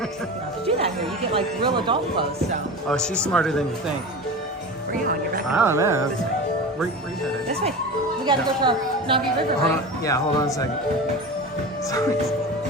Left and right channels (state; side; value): normal; both; correlation 0.30